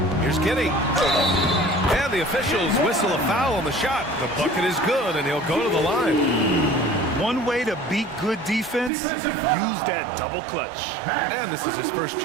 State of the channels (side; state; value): left; drops out; at 8.9 s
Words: Here's Giddey. And the officials whistle a foul on the shot. The bucket is good, and he'll go to the line. One way to beat good defense, use that double clutch. And this is his first